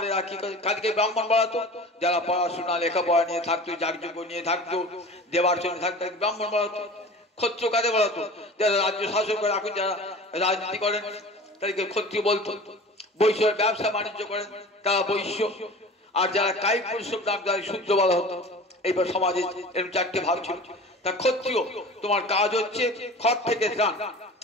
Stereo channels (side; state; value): both; normal; correlation 0.39